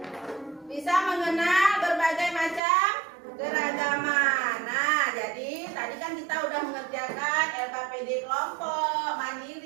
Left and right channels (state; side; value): drops out; left; at 2.6 s